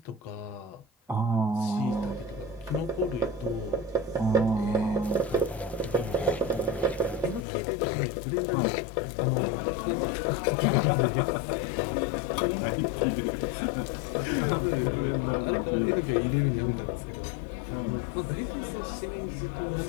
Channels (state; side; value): drops out; right; at 7.5 s